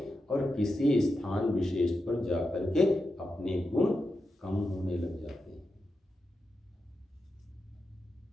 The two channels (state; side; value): normal; both; correlation 0.89